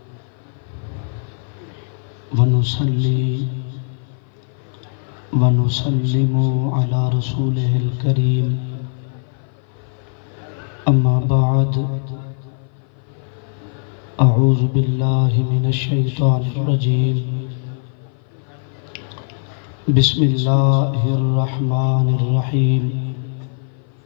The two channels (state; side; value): silent; right; 58 dB below the other